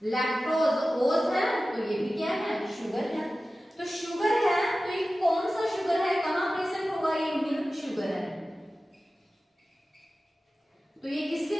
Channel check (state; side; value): normal; both; correlation 0.95